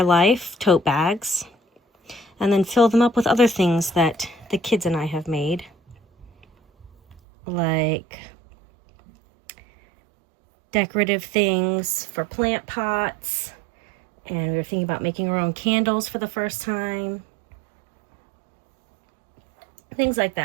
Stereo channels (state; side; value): drops out; left; at 7.2 s